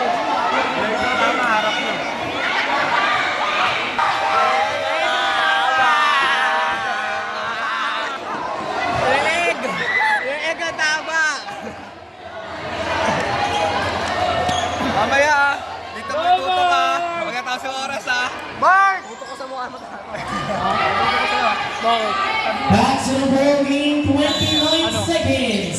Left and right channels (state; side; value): identical; both; correlation 1.00